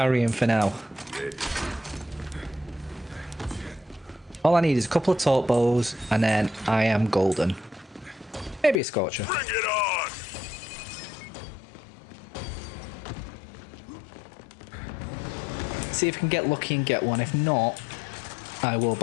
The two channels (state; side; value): drops out; right; at 8.8 s